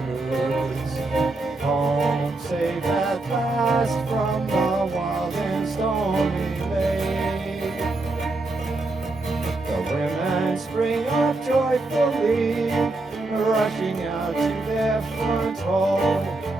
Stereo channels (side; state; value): left; quieter; 3.1 dB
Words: Home safe at last from the wild and stormy lake. The women spring up joyfully, rushing out to their front hall,